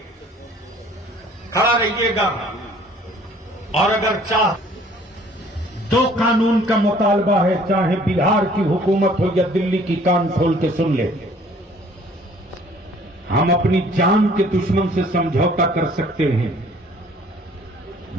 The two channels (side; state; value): both; normal; correlation 0.55